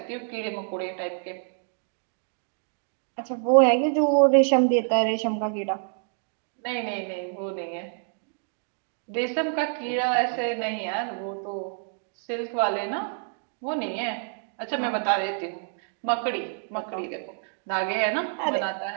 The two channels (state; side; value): silent; left; 60 dB below the other